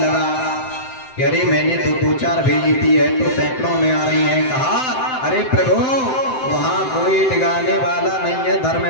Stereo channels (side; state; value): right; late; 7.7 ms